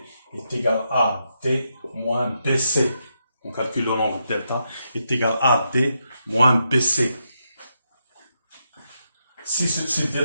est égal à D moins BC. On calcule le nombre delta est égal à D moins BC. Si ce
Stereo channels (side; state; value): both; inverted; correlation -0.82